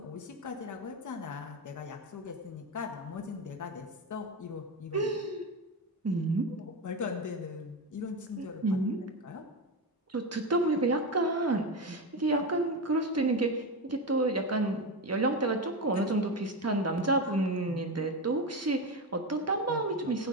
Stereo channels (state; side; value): normal; both; correlation 0.17